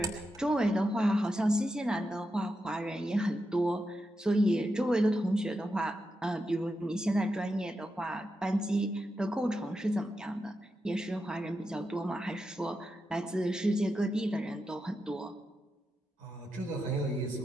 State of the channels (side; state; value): both; normal; correlation 0.87